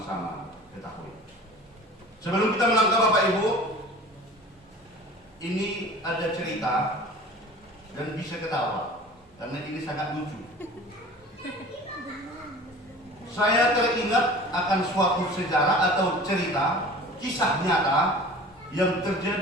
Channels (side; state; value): both; normal; correlation 0.42